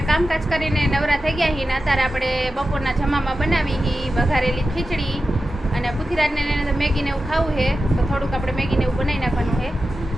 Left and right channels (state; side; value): normal; both; correlation 0.92